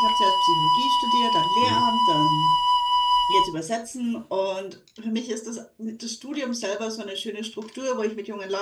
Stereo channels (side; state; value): both; identical; correlation 1.00